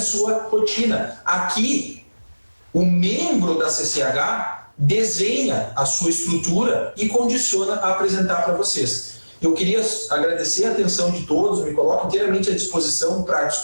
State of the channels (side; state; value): both; inverted; correlation -1.00